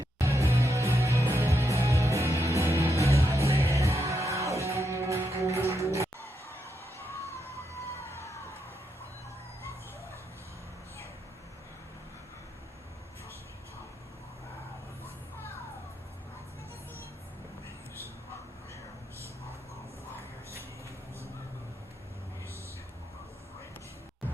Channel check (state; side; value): normal; both; correlation 0.82